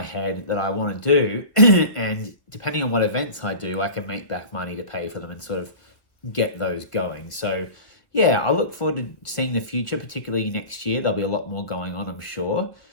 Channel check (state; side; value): late; right; 1.3 ms